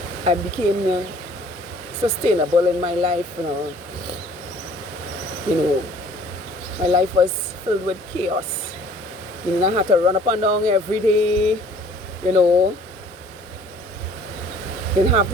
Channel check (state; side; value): normal; both; correlation 0.53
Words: I became sustainable in my life, my life was filled with chaos. I had to run up and down every day, didn't have